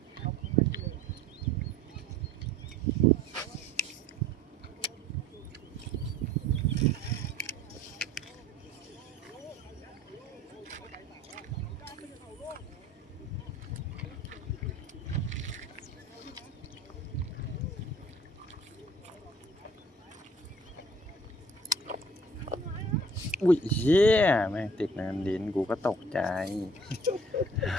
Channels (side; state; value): both; normal; correlation 0.52